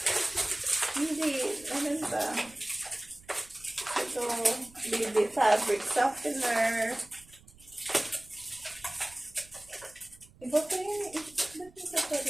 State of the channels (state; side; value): noise; right; rumble, 25 dB below the sound